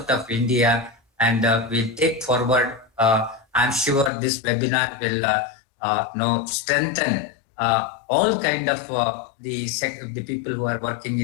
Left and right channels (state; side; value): drops out; right; at 4.1 s